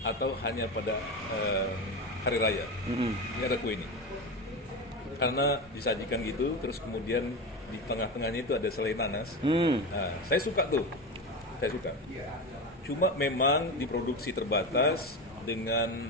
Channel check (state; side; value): normal; both; correlation 0.21